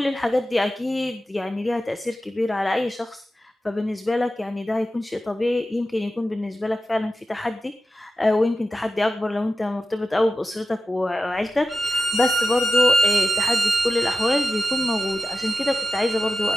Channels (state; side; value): normal; both; correlation 0.93